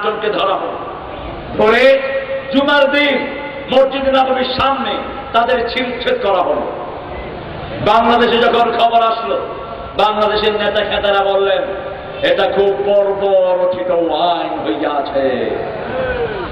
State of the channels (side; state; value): both; identical; correlation 1.00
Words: জনকে ধরা হলো। ধরে জুমার দিন মসজিদে নববীর সামনে তাদের ছিলছেদ করা হলো। বাংলাদেশে যখন খবর আসলো, বাংলাদেশের নেতা খেতারা বললেন এটা খুব বর্বরচিত আইন হইয়াছে,